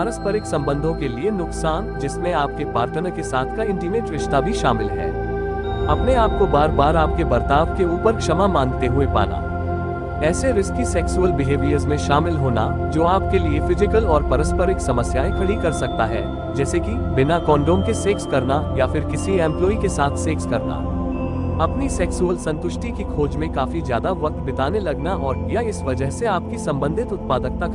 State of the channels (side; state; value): both; identical; correlation 1.00